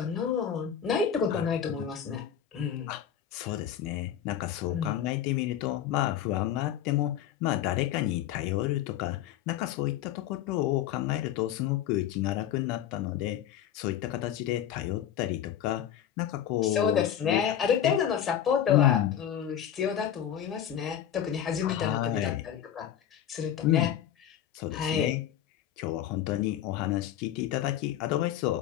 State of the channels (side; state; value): right; quieter; 10.2 dB